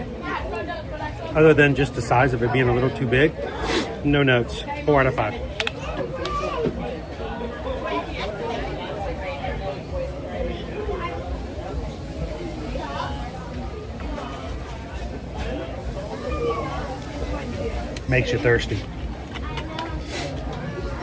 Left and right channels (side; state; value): both; identical; correlation 1.00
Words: other than just the size of it being a little too big, no notes. 4 out of 5. Makes you thirsty.